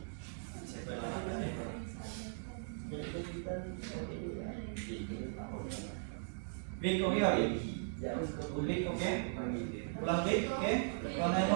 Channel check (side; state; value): left; silent; digital silence